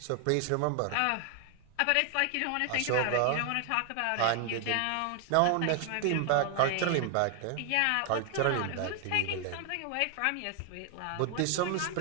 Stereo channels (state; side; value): different; both; correlation 0.00